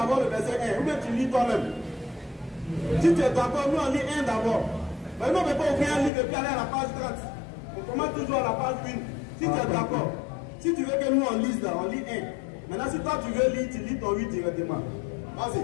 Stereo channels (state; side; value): drops out; right; at 6.1 s